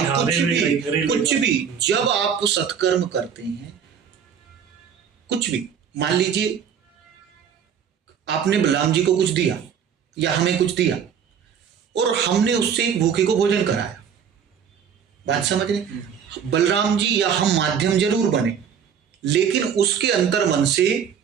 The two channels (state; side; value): quieter; left; 7.6 dB